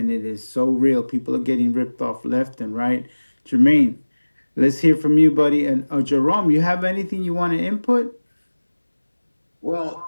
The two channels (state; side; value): inverted; both; correlation -1.00